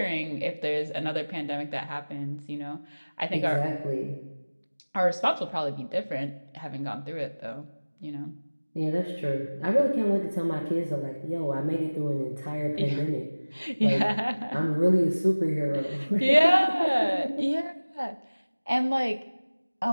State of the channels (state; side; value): inverted; both; correlation -1.00